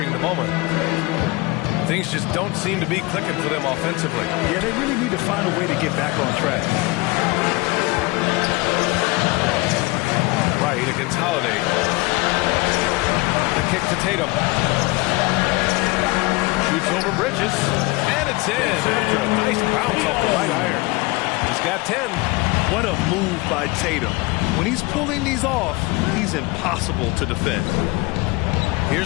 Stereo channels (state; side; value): quieter; right; 23.5 dB